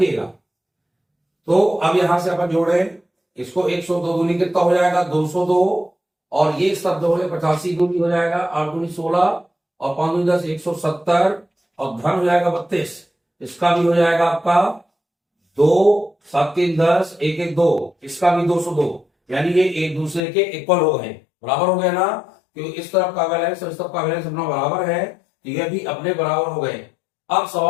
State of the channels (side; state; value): right; drops out; at 20.2 s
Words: तो अब यहां से अपन जोड़े इसको, 102 दूनी कितना हो जाएगा 202, और ये शब्द हो गए 85 दूनी हो जाएगा 8 दूनी 16 और 5 दूनी 10 170 और धन हो जाएगा 32। इसका भी हो जाएगा आपका 2 7 3 10 1 1 2, इसका भी 202, यानी ये एक दूसरे के इक्वल हो गए, बराबर हो गए ना। क्योंकि इस तरफ का बैलेंस और इस तरफ का बैलेंस अपना बराबर है, तो ये भी अपने बराबर हो गए। अब